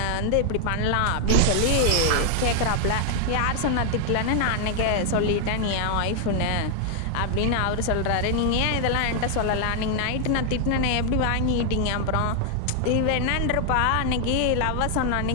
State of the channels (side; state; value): both; different; correlation 0.00